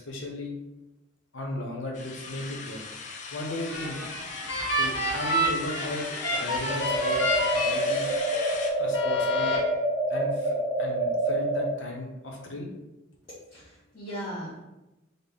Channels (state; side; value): normal; both; correlation 0.08